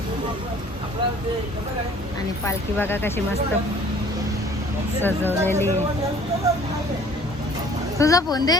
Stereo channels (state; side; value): normal; both; correlation 0.53